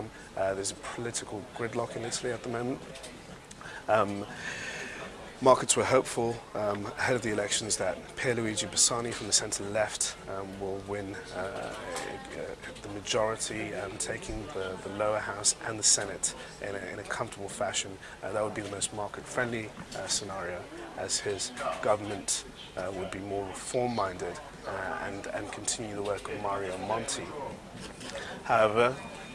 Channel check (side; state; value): both; identical; correlation 1.00